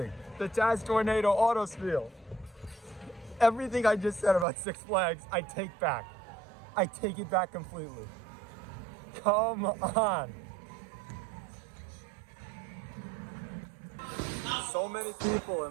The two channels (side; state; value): left; drops out; at 4.5 s